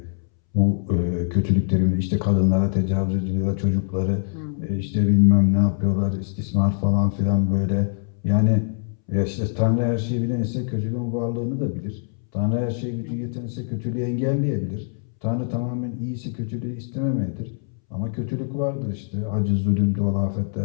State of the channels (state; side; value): silent; right; 63 dB below the other